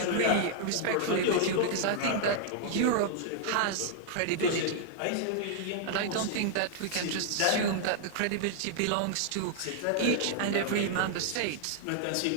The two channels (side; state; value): both; different; correlation -0.01